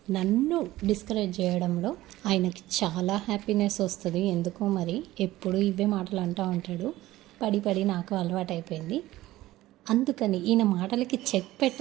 నన్ను డిస్కరేజ్ చేయడంలో ఆయనకి చాలా హ్యాపీనెస్ వస్తుంది. ఎందుకో మరి ఎప్పుడు ఇవే మాటలు అంటూ ఉంటాడు. పడి పడి నాకు అలవాటైపోయింది. అందుకని ఈయన మాటలకి చెక్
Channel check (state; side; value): quieter; left; 16.4 dB